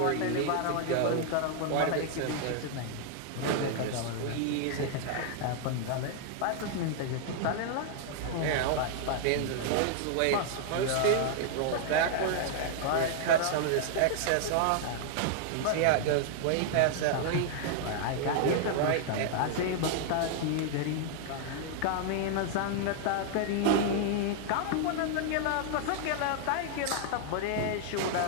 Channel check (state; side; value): different; both; correlation -0.01